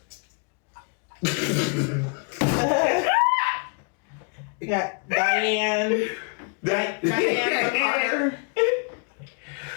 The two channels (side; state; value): right; quieter; 38.0 dB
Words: We got Diane Carter.